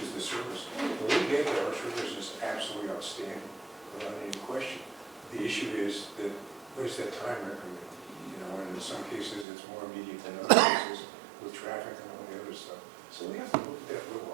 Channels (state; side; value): drops out; left; at 9.5 s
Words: is the service. When we get there, our service is absolutely outstanding, without any question. The issue is that, what is that time increment? You know, and in some cases, it's more immediate than other cases, with traffic and all the other stuff. So we have to look at that real